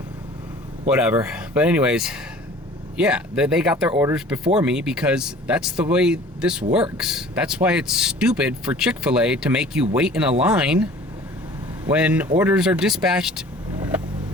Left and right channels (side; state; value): both; normal; correlation 0.47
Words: Whatever. But anyways, yeah, they got their orders before me because that's the way this works. That's why it's stupid for Chick-fil-A to make you wait in a line when orders are dispatched